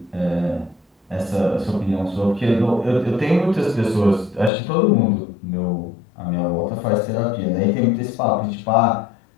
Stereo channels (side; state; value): right; drops out; at 4.5 s